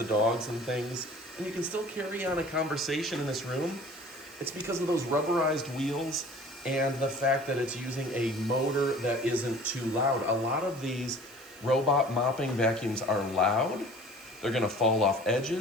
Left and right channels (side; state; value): right; noise; hiss, 24 dB below the sound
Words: dogs and things. And you can still carry on a conversation in this room. It's because of those rubberized wheels and the fact that it's using a motor that isn't too loud. A lot of these robot mopping vacuums are loud. They're gonna fall off